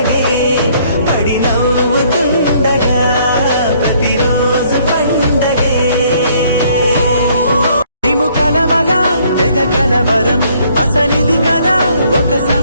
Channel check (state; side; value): inverted; both; correlation -0.64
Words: పడి నవ్వుతుండగా ప్రతిరోజు పండగే మేము కలవగా తెగ కలవరం అసలిది కదా ఒక